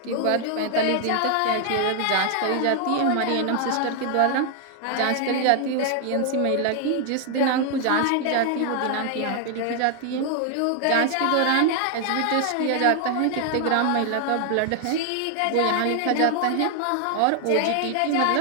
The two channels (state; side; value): different; both; correlation 0.00